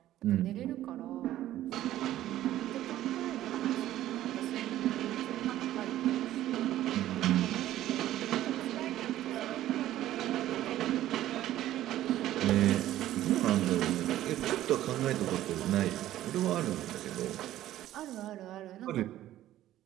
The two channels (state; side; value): quieter; left; 13.6 dB